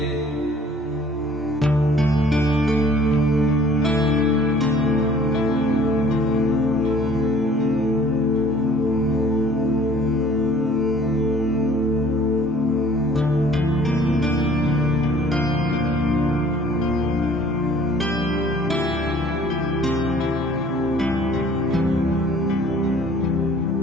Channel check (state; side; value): normal; both; correlation 0.53